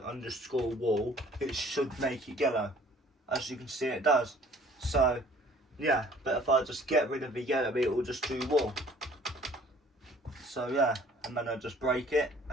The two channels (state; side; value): normal; both; correlation 0.54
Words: underscore wool, it should make it yellow. As you can see, it does. So, yeah, but if I just get rid of the yellow, it will just do wool. So, yeah, and then I just break it,